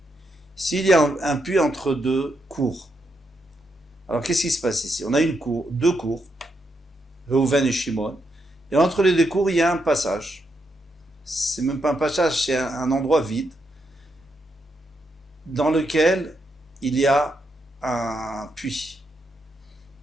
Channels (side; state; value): both; normal; correlation 0.81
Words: S'il y a un puits entre deux cours. Alors, qu'est-ce qui se passe ici? On a deux cours, Reuven et Shimon. Et entre les deux cours, il y a un passage. C'est même pas un passage, c'est un endroit vide dans lequel il y a un puits.